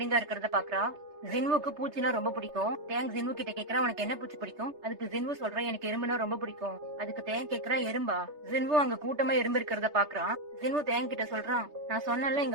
இருக்கிறத பாக்குறா. ஜின்வுக்கு பூச்சினா ரொம்ப பிடிக்கும். தேங் ஜின்வு கிட்ட கேக்குறா, உனக்கு என்ன பூச்சி பிடிக்கும்? அதுக்கு ஜின்வு சொல்றா, எனக்கு எறும்புனா ரொம்ப பிடிக்கும். அதுக்கு தேங் கேக்குறா, எறும்பா? ஜின்வு அங்க கூட்டமா எறும்பு இருக்கிறத பாக்குறான். ஜின்வு தேங் கிட்ட சொல்றான், நான் சொன்னல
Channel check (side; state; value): left; late; 3.3 ms